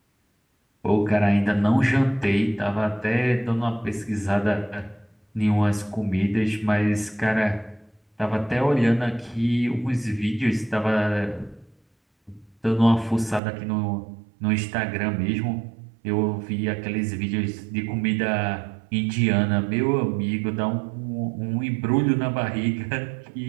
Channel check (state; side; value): drops out; left; at 13.4 s